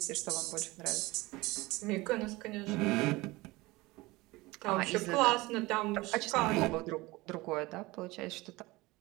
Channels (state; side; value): quieter; left; 21.1 dB